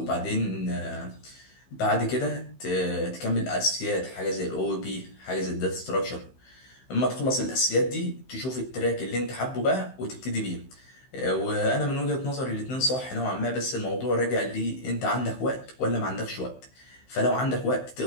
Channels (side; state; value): right; late; 15 ms